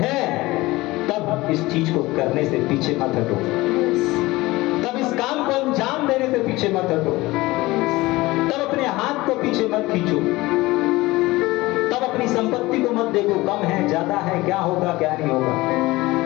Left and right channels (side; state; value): right; quieter; 20.0 dB